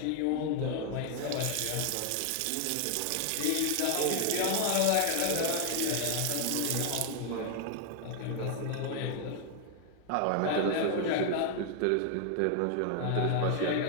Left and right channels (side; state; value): both; different; correlation 0.00